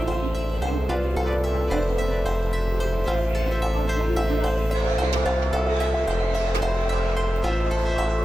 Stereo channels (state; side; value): normal; both; correlation 0.93